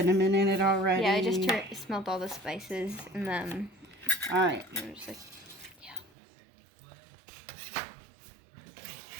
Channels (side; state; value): left; drops out; at 6.1 s